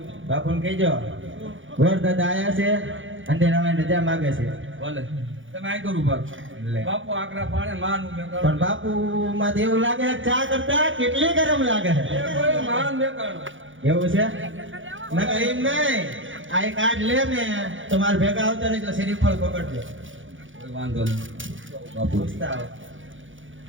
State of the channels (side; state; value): left; late; 0.56 ms